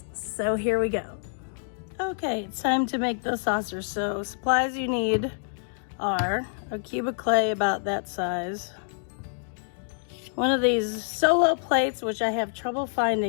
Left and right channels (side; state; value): right; silent; digital silence